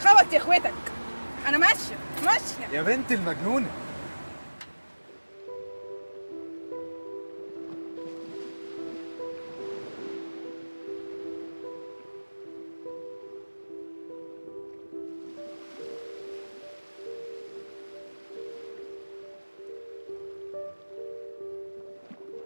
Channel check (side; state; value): both; inverted; correlation -1.00